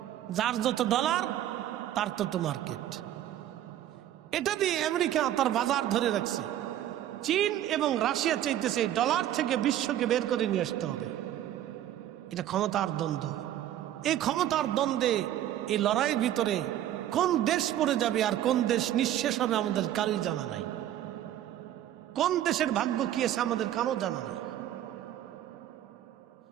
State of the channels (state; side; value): quieter; left; 12.1 dB